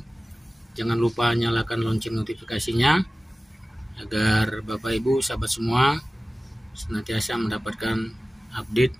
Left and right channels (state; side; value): normal; both; correlation 0.97